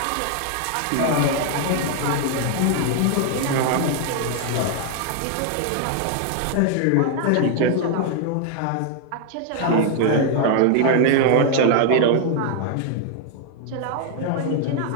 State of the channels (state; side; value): different; both; correlation 0.00